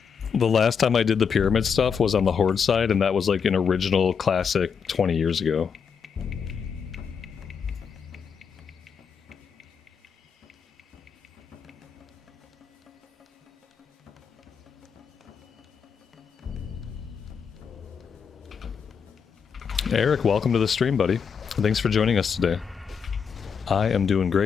The last time I did the Pyramid stuff was on the Horde side, and that was like an original classic 20 years ago. Eric, welcome to the stream, buddy. Thanks for joining us today. I am doing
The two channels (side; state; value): right; quieter; 6.5 dB